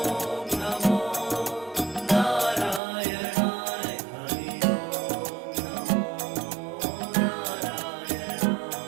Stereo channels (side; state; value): left; drops out; at 2.8 s